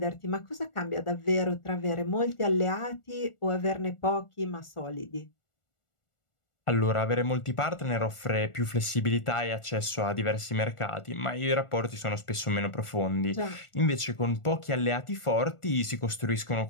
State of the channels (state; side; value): late; right; 1.4 ms